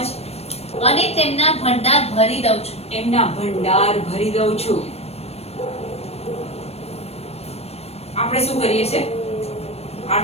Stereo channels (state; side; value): late; right; 0.30 ms